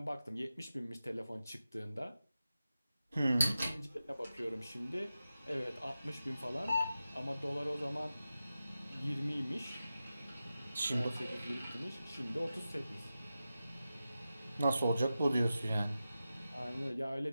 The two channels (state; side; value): inverted; both; correlation -0.93